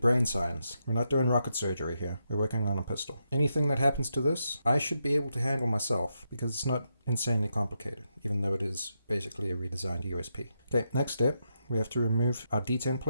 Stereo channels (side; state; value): both; inverted; correlation -0.83